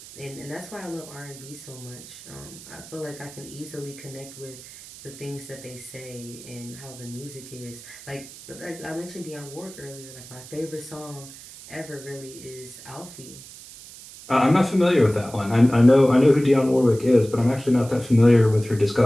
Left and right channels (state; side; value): noise; right; hiss, 17 dB below the sound